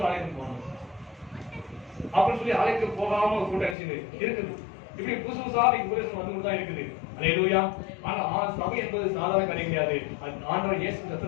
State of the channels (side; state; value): right; drops out; at 3.8 s